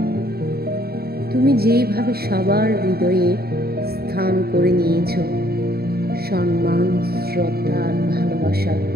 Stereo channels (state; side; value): late; left; 0.45 ms